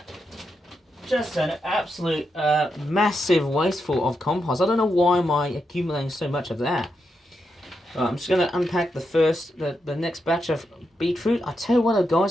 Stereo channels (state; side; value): normal; both; correlation 0.84